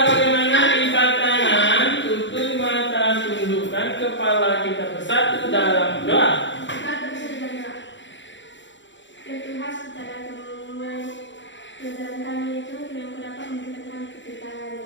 bagaimana lipat tangan, tutup mata, tundukkan kepala kita bersatu dalam doa. Ya Tuhan, secara pelajaran kami itu yang dapat memberikan kepikiran.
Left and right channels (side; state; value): right; late; 0.54 ms